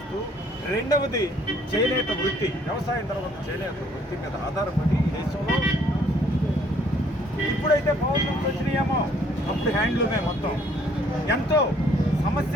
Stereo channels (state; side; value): normal; both; correlation 0.62